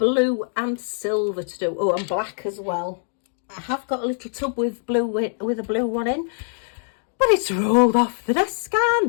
and silver to do. Oh, and black as well. I have got a little tub with blue with a blue one in. But it's rolled off the desk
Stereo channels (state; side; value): silent; right; digital silence